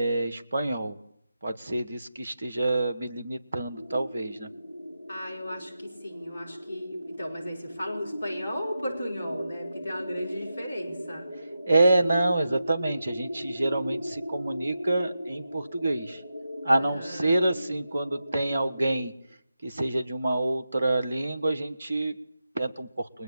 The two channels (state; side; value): inverted; both; correlation -0.90